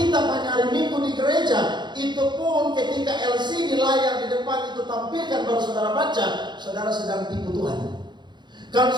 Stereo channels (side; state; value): left; late; 0.21 ms